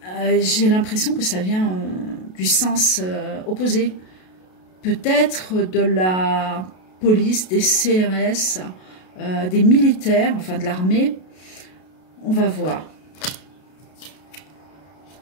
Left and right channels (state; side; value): late; right; 32 ms